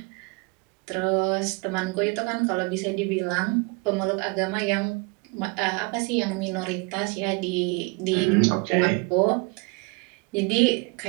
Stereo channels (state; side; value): quieter; left; 30.2 dB